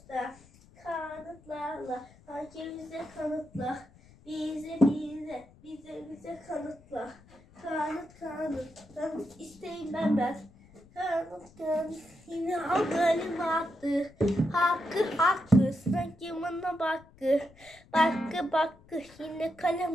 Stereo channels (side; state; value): left; noise; rumble, 25 dB below the sound